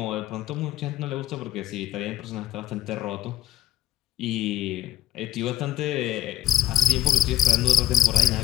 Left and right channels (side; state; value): right; quieter; 12.8 dB